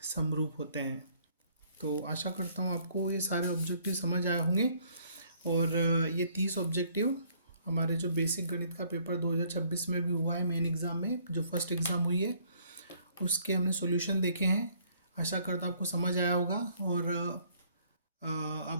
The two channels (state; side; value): inverted; both; correlation -0.63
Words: समरूप होते हैं। तो आशा करता हूँ आपको ये सारे ऑब्जेक्टिव समझ आए होंगे। और ये 30 ऑब्जेक्टिव हमारे जो बेसिक गणित का पेपर 2026 में भी हुआ है, मेन एग्ज़ाम में जो फर्स्ट एग्ज़ाम हुई है उसके हमने सॉल्यूशन देखे हैं। आशा करता हूँ आपको समझ आया होगा और आप